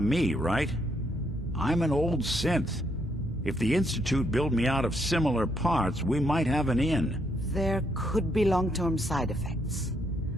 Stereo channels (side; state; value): both; normal; correlation 0.74